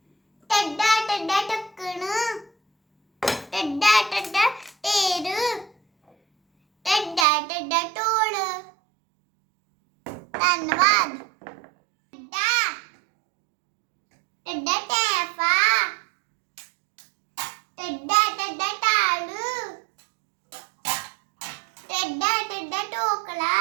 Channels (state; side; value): drops out; left; at 7.2 s